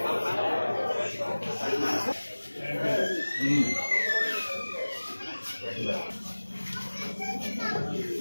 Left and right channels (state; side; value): inverted; both; correlation -1.00